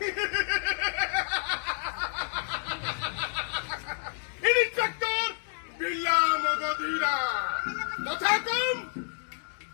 इंस्पेक्टर बिल्ला मगधीरा कथा कम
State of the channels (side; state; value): right; silent; digital silence